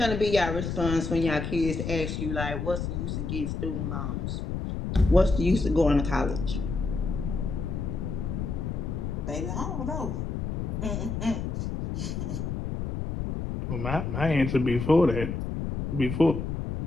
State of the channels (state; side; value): noise; left; rumble, 3 dB below the sound